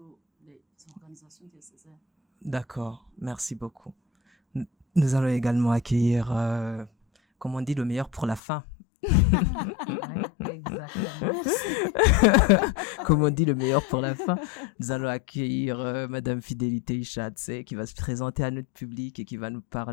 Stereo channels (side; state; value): right; drops out; at 8.4 s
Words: les organisations diocésaines. D'accord, merci beaucoup. Nous allons également accueillir, comme on dit, le meilleur pour la fin. Exactement. Comme on dit, le meilleur pour la fin. Nous allons accueillir Madame Fidélité Ishadze qui va se présenter à notre public et qui va nous